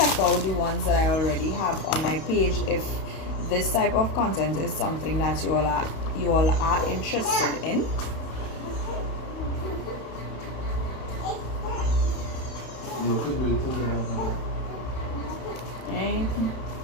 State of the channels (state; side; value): late; right; 32 ms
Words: out the ones that I already have on my page if this type of content is something that you all are interested in. Okay.